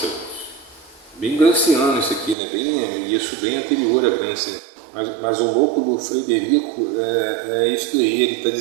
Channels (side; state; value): left; drops out; at 2.4 s